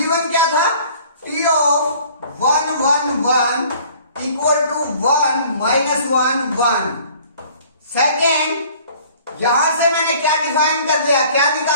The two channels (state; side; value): inverted; both; correlation -0.53